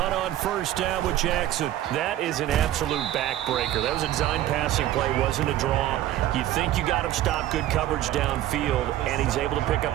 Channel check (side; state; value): left; quieter; 13.4 dB